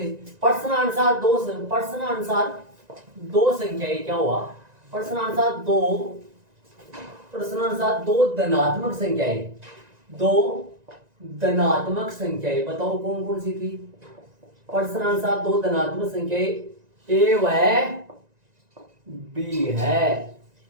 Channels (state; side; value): late; left; 1.9 ms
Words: प्रश्नानुसार दो संख्याएं क्या हुआ, प्रश्नानुसार दो धनात्मक संख्याएं बताओ कौन कौन सी थी। प्रश्नानुसार दो धनात्मक संख्याएं a व b है,